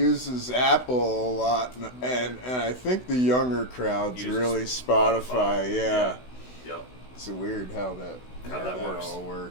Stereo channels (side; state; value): right; late; 16 ms